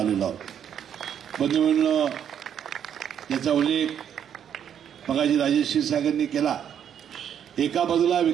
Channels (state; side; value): quieter; left; 9.0 dB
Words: आहोत. बंधूंनो, याचा उल्लेख मगाशी राजेश क्षीरसागरांनी केला. एका बाजूला